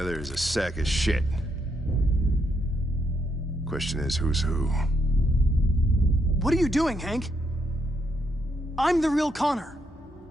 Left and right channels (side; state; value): both; normal; correlation 0.77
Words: is a sack of shit. Question is, who's who? What are you doing, Hank? I'm the real Connor.